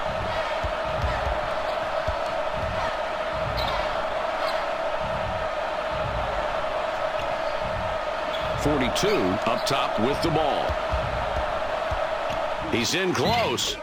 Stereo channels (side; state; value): both; identical; correlation 1.00